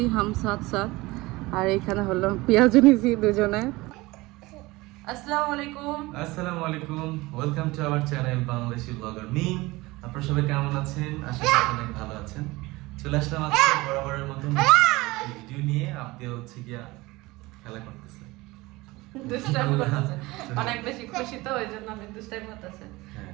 হাম সাথ সাথ, আর এখানে হলো পেঁয়াজ নিয়েছি দুজনে। আসসালামু আলাইকুম। আসসালামু আলাইকুম, welcome to our channel Bangladeshi blogger Mim. আপনারা সবাই কেমন আছেন? আশা করি অনেক ভালো আছেন। চলে আসলাম আজকে বরাবরের মতো ভিডিও নিয়ে। আপনি হচ্ছে গিয়া খেলা করতেছে, অনেক বেশি খুশি তো ওই জন্য আমি দুষ্টাইম করতেছে,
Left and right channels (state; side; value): quieter; left; 21.2 dB